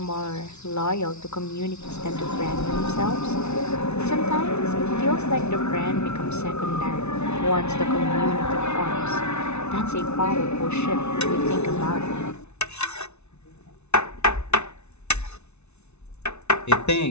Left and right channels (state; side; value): late; right; 0.81 ms